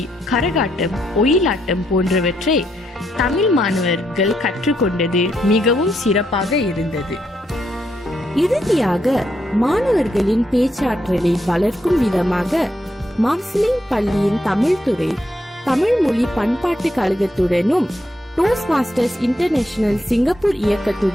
கரகாட்டம், ஒயிலாட்டம் போன்றவற்றை தமிழ் மாணவர்கள் கற்றுக்கொண்டது மிகவும் சிறப்பாக இருந்தது. இறுதியாக மாணவர்களின் பேச்சாற்றலை வளர்க்கும் விதமாக மார்சிலிங் பள்ளியின் தமிழ் துறை தமிழ் மொழி பண்பாட்டு கழகத்துடனும் டோஸ்ட் மாஸ்டர்ஸ் இன்டர்நேஷனல் சிங்கப்பூர்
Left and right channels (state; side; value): normal; both; correlation 0.78